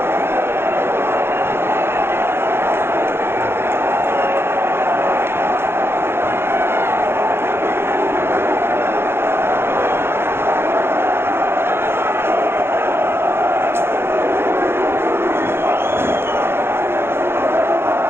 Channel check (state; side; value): late; left; 0.11 ms